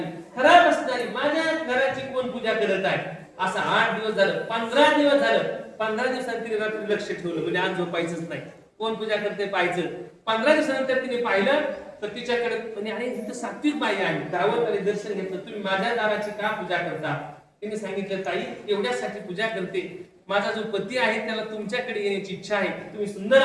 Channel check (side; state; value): both; identical; correlation 1.00